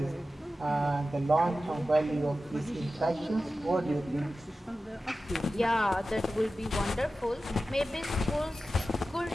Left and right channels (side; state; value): both; normal; correlation 0.94